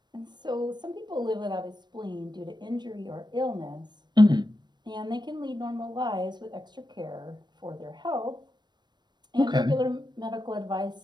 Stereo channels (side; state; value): left; late; 0.21 ms